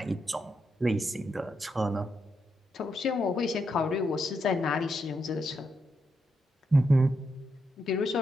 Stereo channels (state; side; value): normal; both; correlation 0.82